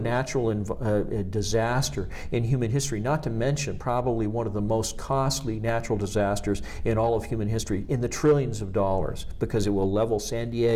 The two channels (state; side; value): identical; both; correlation 1.00